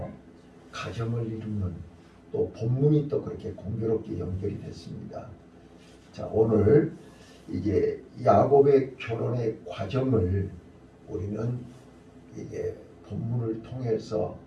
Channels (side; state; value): both; identical; correlation 1.00